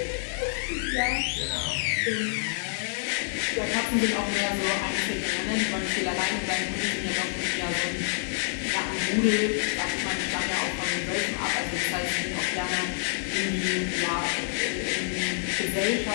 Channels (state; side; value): silent; right; 58 dB below the other